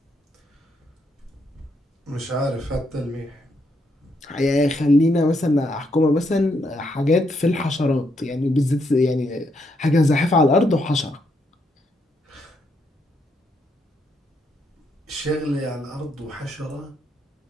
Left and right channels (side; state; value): both; normal; correlation 0.76